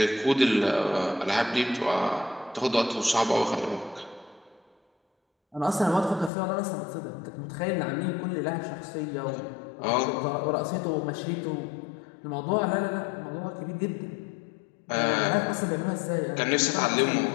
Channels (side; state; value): right; drops out; at 6.3 s